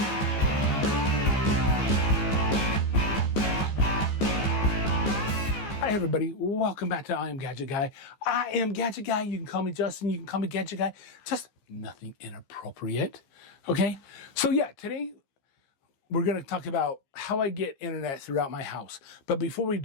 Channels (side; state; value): right; late; 15 ms